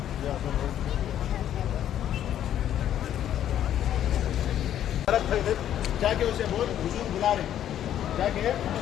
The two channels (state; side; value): quieter; right; 10.9 dB